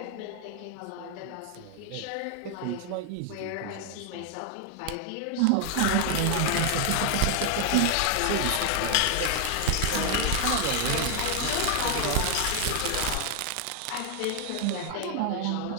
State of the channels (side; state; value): both; different; correlation 0.00